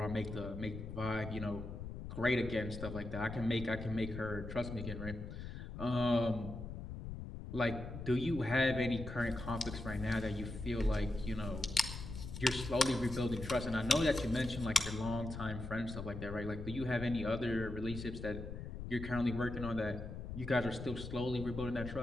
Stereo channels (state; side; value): noise; left; rumble, 8 dB below the sound